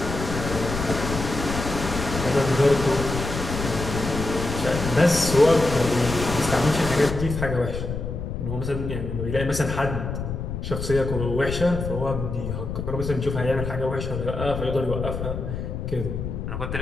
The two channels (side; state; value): left; noise; rumble, 5 dB below the sound